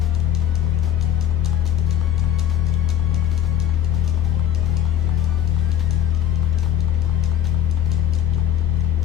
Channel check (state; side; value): quieter; right; 11.0 dB